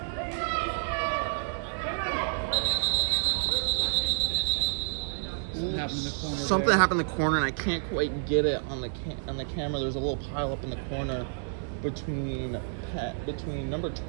Something happened in the corner, and I can't quite get it on the camera. There's a little pile up in the corner between number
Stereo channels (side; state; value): left; silent; digital silence